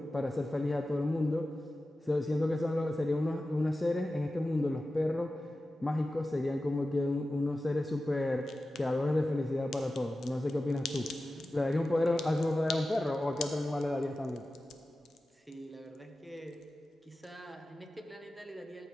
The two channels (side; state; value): both; normal; correlation 0.94